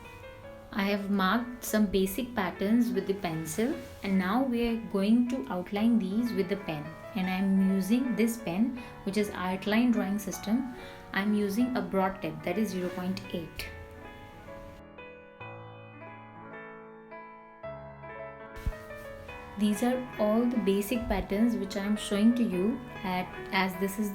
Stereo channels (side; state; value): both; identical; correlation 1.00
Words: I have marked some basic patterns with the pencil, and now we are going to outline these with the pen, and I am using this pen, which is Artline Drawing System. I am using a broad tip, that is 0.8. These are all the basic patterns which I am showing to you as this is